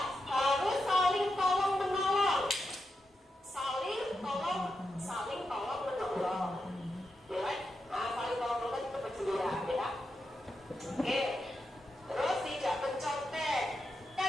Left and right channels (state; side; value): normal; both; correlation 0.87